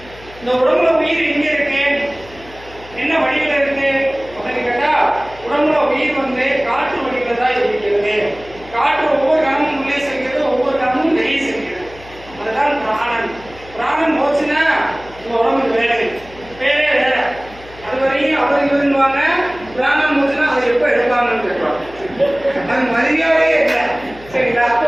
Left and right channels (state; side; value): noise; left; hum, 21 dB below the sound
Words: இந்த உடம்புல உயிர் எங்கே இருக்கு? இருந்துவாங்க, பிராணம் முடிச்சுன்னா அதை எப்போ எடுப்பாங்கன்னு கேட்பாங்க. அது மரியாதையே இல்லை. சரிங்களா? அப்போ